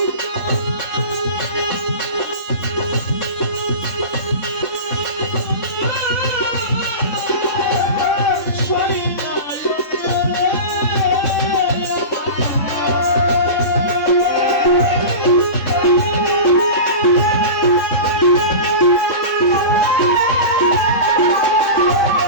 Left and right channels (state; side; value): late; right; 3.6 ms